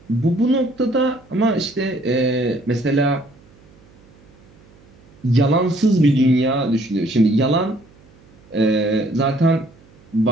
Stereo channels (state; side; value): noise; right; hum, 28 dB below the sound